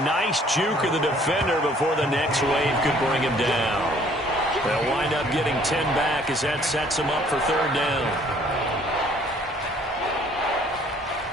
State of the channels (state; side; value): normal; both; correlation 0.59